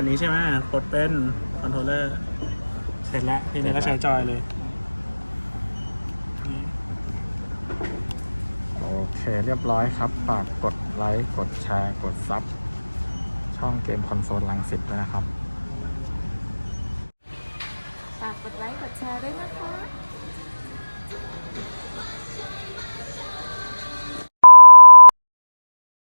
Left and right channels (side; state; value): both; inverted; correlation -1.00